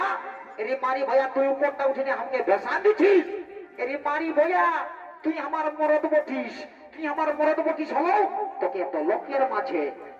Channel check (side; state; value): both; identical; correlation 1.00